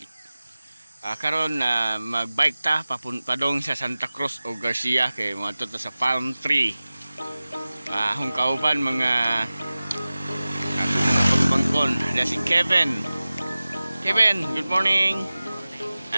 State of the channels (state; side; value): inverted; both; correlation -0.97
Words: Karon na magbike ta padong sa Santa Cruz o Garcia kay moadto ta sa Palm Tree. Hung kauban mga pagbangkon. Ada si Kevin. Kevin, good morning.